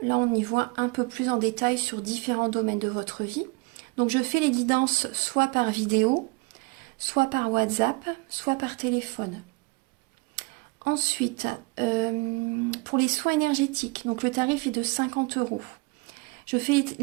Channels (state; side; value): quieter; left; 27.4 dB